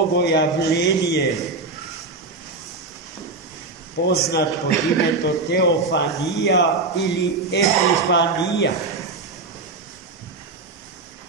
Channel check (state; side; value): quieter; left; 3.7 dB